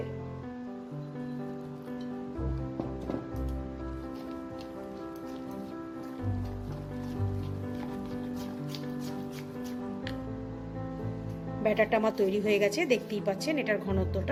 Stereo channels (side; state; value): both; identical; correlation 1.00